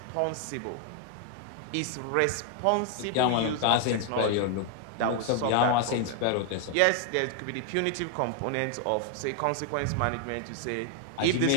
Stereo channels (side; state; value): both; different; correlation 0.00